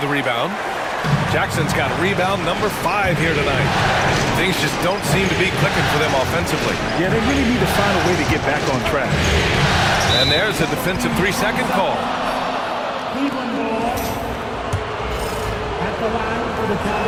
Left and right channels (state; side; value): identical; both; correlation 1.00